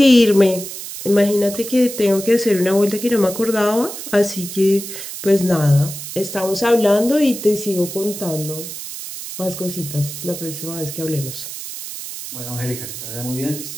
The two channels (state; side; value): noise; right; hiss, 9 dB below the sound